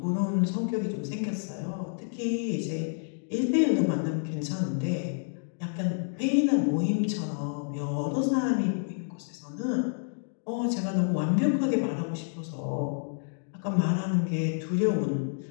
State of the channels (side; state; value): right; silent; digital silence